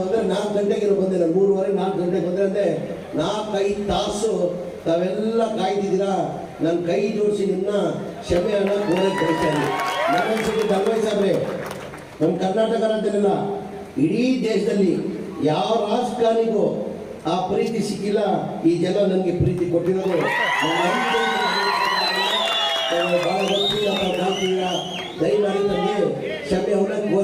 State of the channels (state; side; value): identical; both; correlation 1.00